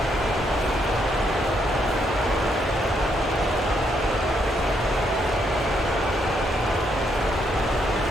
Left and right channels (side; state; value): both; normal; correlation 0.75